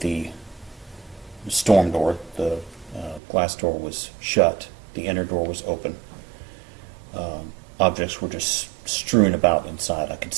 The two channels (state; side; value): drops out; left; at 3.2 s